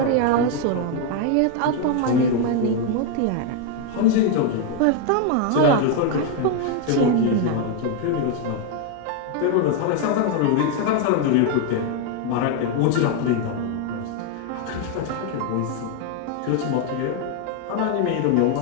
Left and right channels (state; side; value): different; both; correlation 0.01